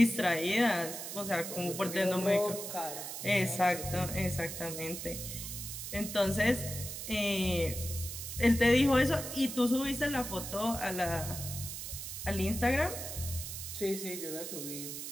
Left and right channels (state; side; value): noise; right; hiss, 7 dB below the sound